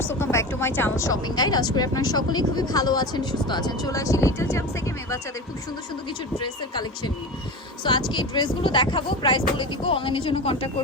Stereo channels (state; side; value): normal; both; correlation 0.28